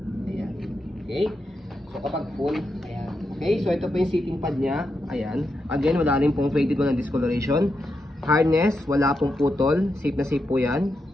Ayan. Okay, so kapag full, ayan. Okay, so ito po yung sitting pad niya. Ayan. Again, wala rin pong faded, walang discoloration. Harness, wala pong putol. Safe na safe po yan.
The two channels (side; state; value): both; normal; correlation 0.85